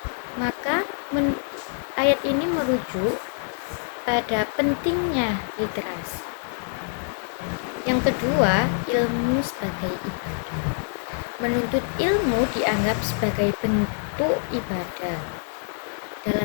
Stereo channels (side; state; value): right; silent; digital silence